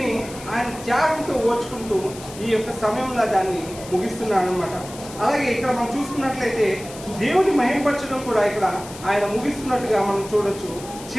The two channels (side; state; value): left; noise; hiss, 15 dB below the sound